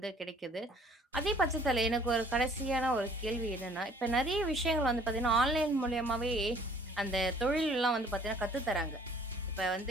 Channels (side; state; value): both; normal; correlation 0.56